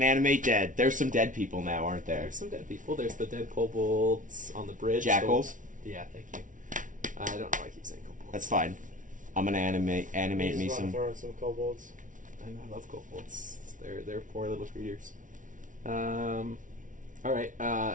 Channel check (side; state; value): left; late; 0.38 ms